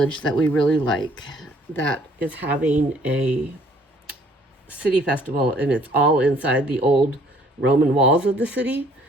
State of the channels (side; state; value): both; normal; correlation 0.60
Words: that we really like that is having a city festival, and it's all inside the old Roman walls of the city.